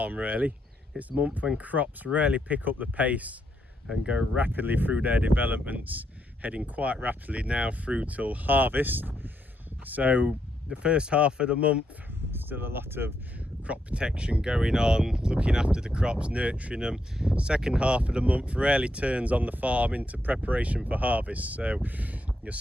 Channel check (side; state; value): both; normal; correlation 0.79